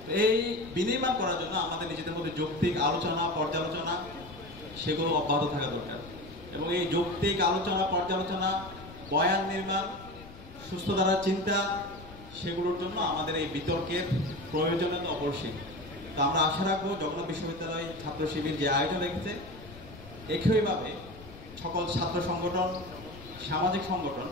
এই বিনির্মাণ করার জন্য আমাদের নিজেদের মধ্যে যৌক্তিক আলোচনা পর্যালোচনা সেগুলো অব্যাহত থাকা দরকার এবং এই যৌক্তিক আলোচনা পর্যালোচনা, বয়ান নির্মাণ, সুস্থ ধারার চিন্তা, সেগুলোর জন্য আমাদের এই বিতর্কের প্রয়োজনীয়তা অপরিসীম। তো আমরা আশা রাখবো জগন্নাথ বিশ্ববিদ্যালয় ছাত্র শিবির যে আয়োজন রেখেছে, একইভাবে সকল ছাত্র সংগঠন, সামাজিক সংগঠন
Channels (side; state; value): left; noise; rumble, 17 dB below the sound